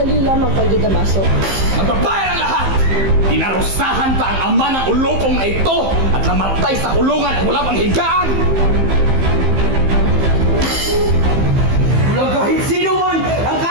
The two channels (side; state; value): left; late; 15 ms